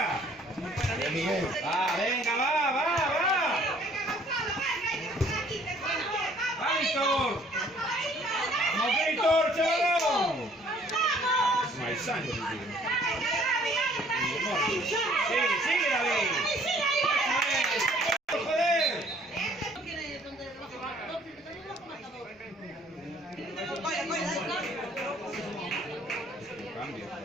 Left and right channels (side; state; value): both; normal; correlation 0.59